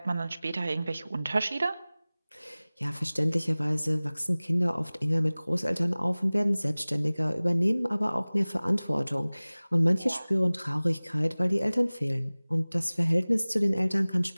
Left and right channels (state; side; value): inverted; both; correlation -0.99